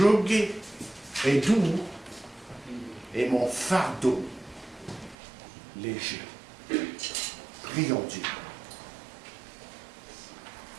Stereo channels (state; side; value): drops out; left; at 5.2 s